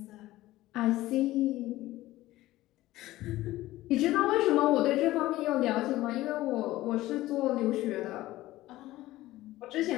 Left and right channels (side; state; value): right; quieter; 16.6 dB